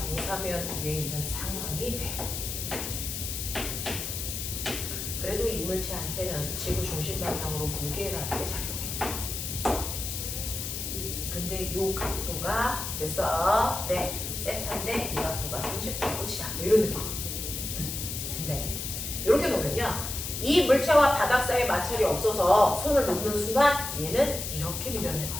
위에 있는 상황이 돼. 그래도 이 물체한테는 지구 중심 방향으로 무게라는 게 작용해. 근데 요 각도가 됐어. 네. 세타인데 이 각도가 30도고 치자. 뭐 이런 느낌. 근데 이렇게 놓으면요. 이 물체와 바닥 사이에 마찰이 없어서 손을 놓는 순간 얘는 이렇게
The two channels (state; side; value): noise; left; hiss, 5 dB below the sound